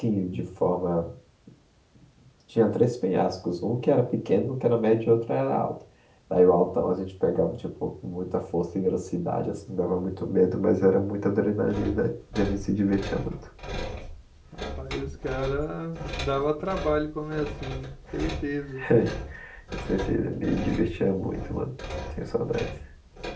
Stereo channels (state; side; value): identical; both; correlation 1.00